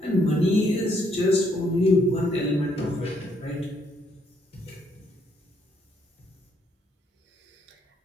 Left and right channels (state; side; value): normal; both; correlation 0.71